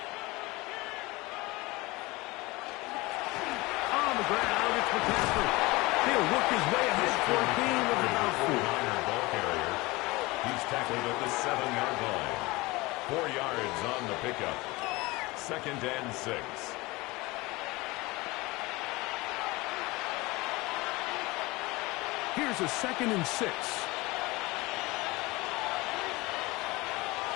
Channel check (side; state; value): right; quieter; 22.3 dB